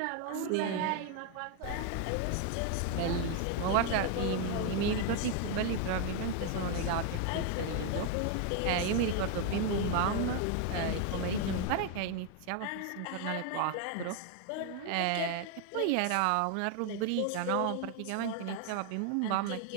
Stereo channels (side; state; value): both; different; correlation 0.01